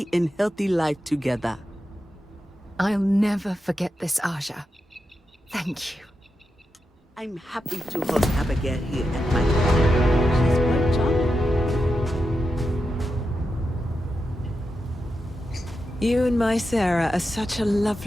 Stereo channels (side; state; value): both; normal; correlation 0.88